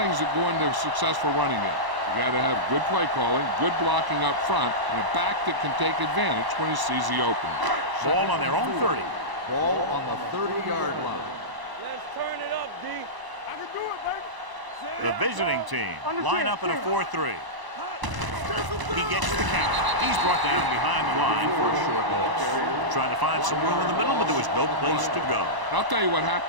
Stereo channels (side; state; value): left; late; 1.0 ms